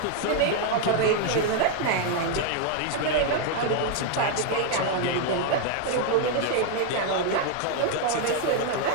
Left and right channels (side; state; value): both; different; correlation 0.00